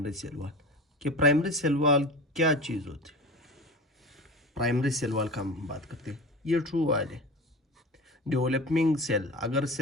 सेल वॉल कि प्राइमरी सेल वॉल क्या चीज़ होती है। प्राइमरी सेल वॉल का हम बात करते हैं, ये ट्रू वॉल है। डेवलपिंग सेल, अगर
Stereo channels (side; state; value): both; normal; correlation 0.32